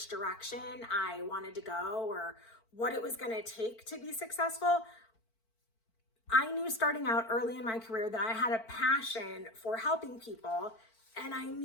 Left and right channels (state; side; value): late; right; 4.5 ms